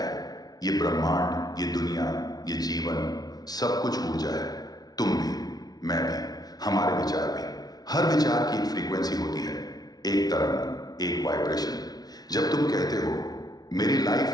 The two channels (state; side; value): late; right; 0.19 ms